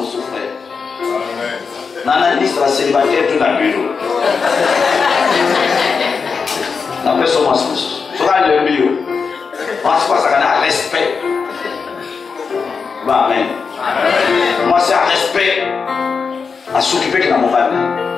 Nana liste la célibataire tout dans le bureau. La personne m'a dit, sera le bureau. Moi, c'est quoi ça qu'on a respect. Bah, amen. Moi, c'est un respect à s'occuper de mon père,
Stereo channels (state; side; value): quieter; right; 5.4 dB